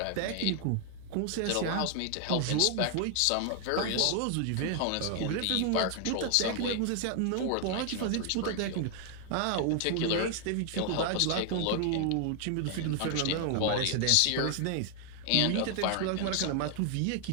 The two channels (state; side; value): different; both; correlation 0.00